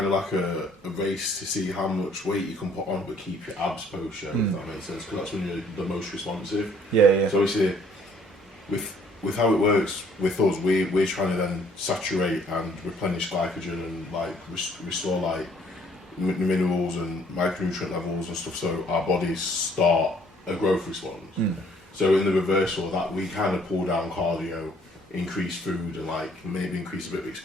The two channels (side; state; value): both; normal; correlation 0.61